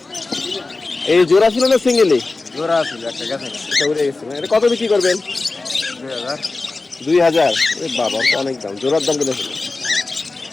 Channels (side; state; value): right; quieter; 3.5 dB